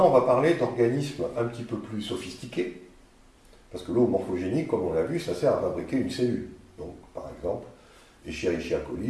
on va parler d'organismes un petit peu plus sophistiqués, parce que l'eau morphogénique, comme on l'a vu, ça sert à fabriquer une cellule. Donc, par exemple, Escherichia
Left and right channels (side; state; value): both; identical; correlation 1.00